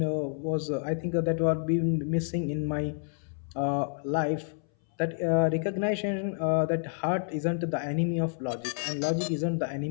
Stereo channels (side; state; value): right; silent; 58 dB below the other